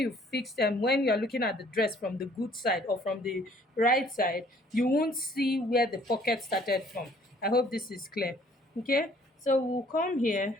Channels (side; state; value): both; normal; correlation 0.59